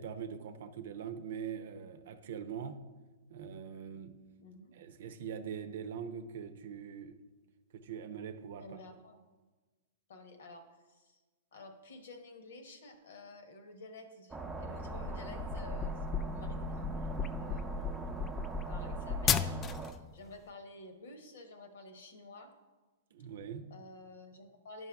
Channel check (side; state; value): both; normal; correlation 0.27